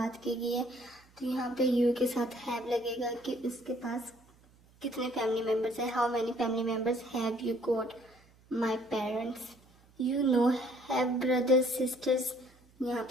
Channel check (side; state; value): right; noise; hum, 29 dB below the sound